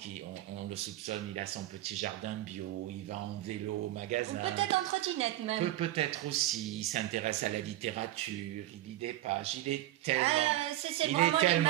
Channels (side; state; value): left; quieter; 15.0 dB